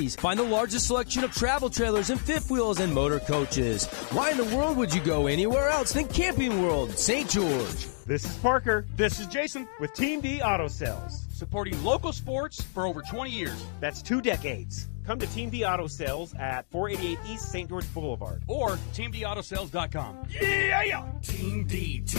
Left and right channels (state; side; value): silent; right; digital silence